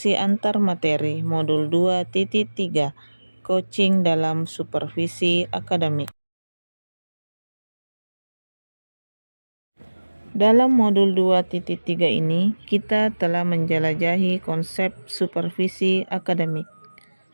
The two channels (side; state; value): both; inverted; correlation -1.00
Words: antar materi modul 2.3 coaching dalam supervisi akademik. Dalam modul 2.3 ini, kita telah menjelajahi konsep supervisi akademik